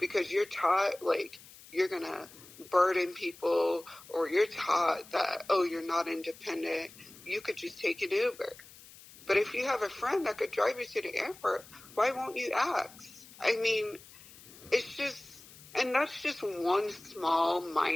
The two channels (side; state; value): left; noise; hiss, 20 dB below the sound